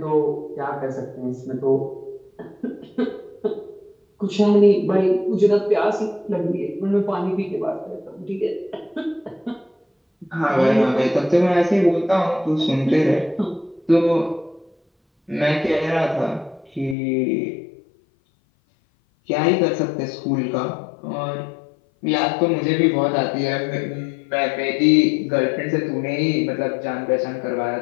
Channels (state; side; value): drops out; right; at 16.9 s